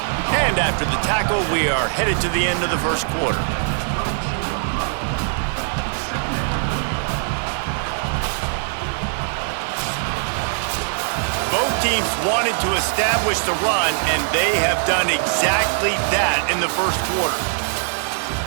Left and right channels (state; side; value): silent; left; digital silence